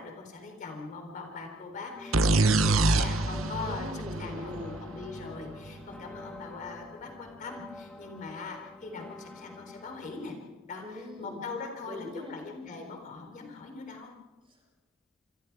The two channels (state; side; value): normal; both; correlation 0.62